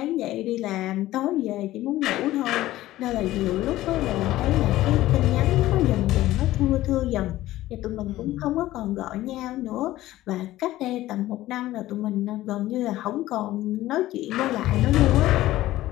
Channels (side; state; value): right; quieter; 15.7 dB